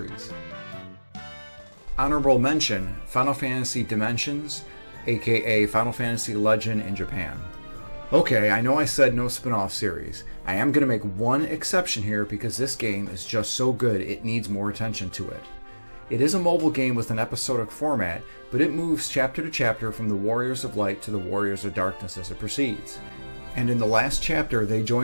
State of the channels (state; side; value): inverted; both; correlation -1.00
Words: Honorable mention, Final Fantasy Dimensions, aka Final Fantasy Legend in Japan. Okay, I know I said no spin-off series. I am going to make one exception here because this game is just so good it needs more attention to it. It is a mobile game with an episodic format, but it moves chapter to chapter from the Warriors of Light to the Warriors of Darkness as it proceeds. And in the last chapter, they